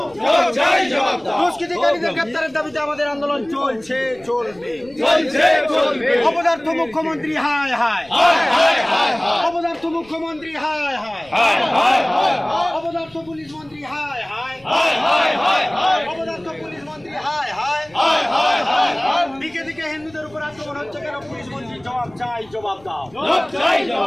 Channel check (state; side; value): noise; left; rumble, 27 dB below the sound